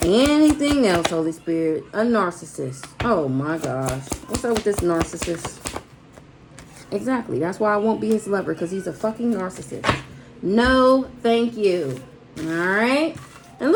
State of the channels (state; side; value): identical; both; correlation 1.00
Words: Anything else, Holy Spirit? A narcissist. Oh my gosh. What's up with this narcissist? Exactly. That's why I won't be his lover, because he's a fucking narcissist. No, thank you. All right. And